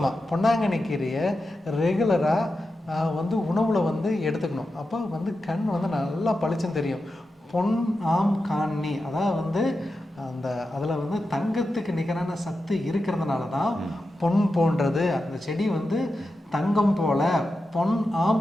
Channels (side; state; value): both; normal; correlation 0.90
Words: பொன்னாங்கண்ணி கீரையை ரெகுலராக வந்து உணவில் வந்து எடுத்துக்கணும். அப்போ வந்து கண் வந்து நல்லா பளிச்சுன்னு தெரியும். பொன் ஆம் காணி, அதாவது வந்து அதில் வந்து தங்கத்துக்கு நிகரான சத்து இருக்கிறதுனால தான் பொன் போன்றது அந்த செடி வந்து தங்கம் போல பொன்